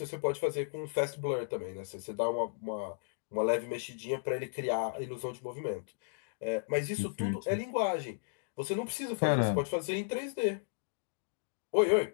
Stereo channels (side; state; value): right; silent; digital silence